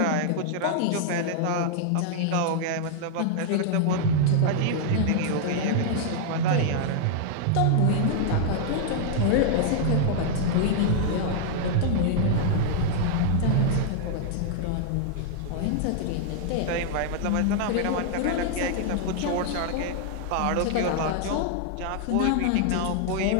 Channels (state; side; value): different; both; correlation -0.01